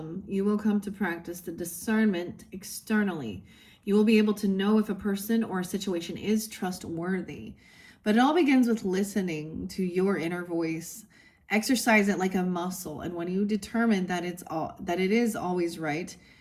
come to practice the discernment externally. You will be able to know if a person or a situation is trustworthy. But it all begins with listening to your inner voice. Exercise it like a muscle, and when you determine that it is always right,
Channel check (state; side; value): identical; both; correlation 1.00